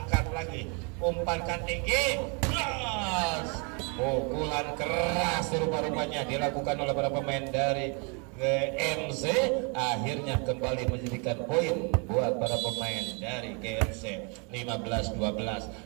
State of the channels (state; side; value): quieter; left; 34.6 dB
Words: lagi, umpankan tinggi, yes! Pukulan keras rupa-rupanya dilakukan oleh para pemain dari GMC, akhirnya kembali menjadikan poin buat para pemain dari GMC. 15-12.